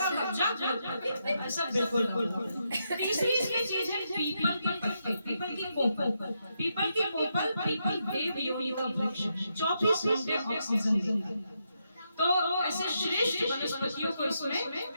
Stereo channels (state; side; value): inverted; both; correlation -0.82